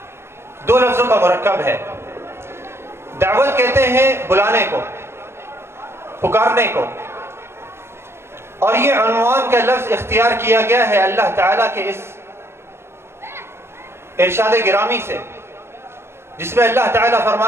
دو لفظوں کا مرکب ہے۔ دعوت کہتے ہیں بلانے کو، پکارنے کو، اور یہ عنوان کا لفظ اختیار کیا گیا ہے اللہ تعالیٰ کے اس ارشاد گرامی سے، جس میں اللہ تعالیٰ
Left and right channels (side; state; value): left; late; 0.12 ms